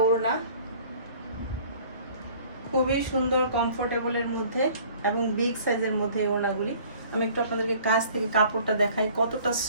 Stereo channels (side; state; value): both; inverted; correlation -0.51